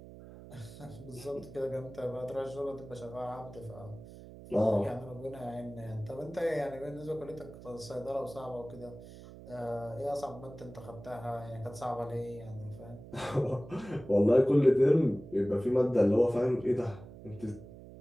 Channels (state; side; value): noise; right; hum, 16 dB below the sound